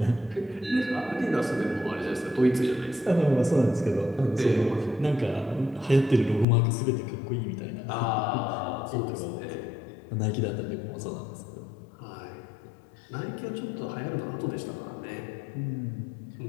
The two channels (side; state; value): right; drops out; at 6.5 s